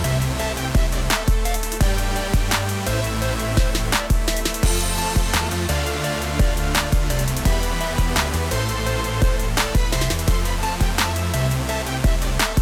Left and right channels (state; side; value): identical; both; correlation 1.00